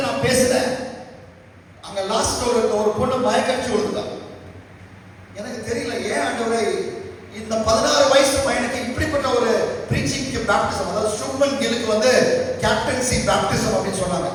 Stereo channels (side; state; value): both; identical; correlation 1.00